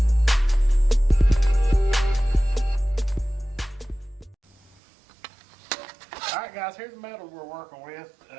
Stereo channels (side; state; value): left; drops out; at 4.8 s